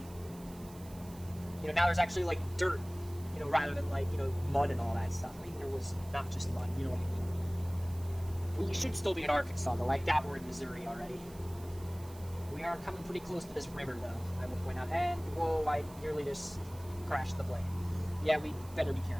now there's actually, like, dirt, rather than, like, mud and all that stuff. I mean, there was not just mud, you know what I mean? We should still be in Arkansas, though. I doubt we're in Missouri already. We are coming pretty close to this river, though, I will point out. And, whoa, I nearly just crashed the plane. Yeah, we better be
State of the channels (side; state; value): right; noise; hiss, 21 dB below the sound